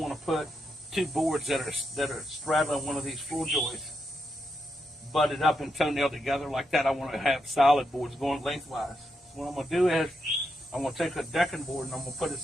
put two boards that are straddling one of these floor joists butted up and toenailed together like that. I want to have solid boards going lengthwise. So what I'm going to do is I'm going to take a decking board and I'm going to put it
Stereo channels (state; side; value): normal; both; correlation 0.83